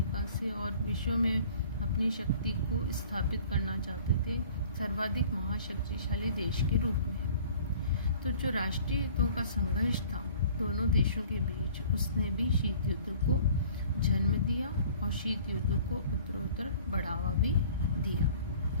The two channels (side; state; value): both; inverted; correlation -0.50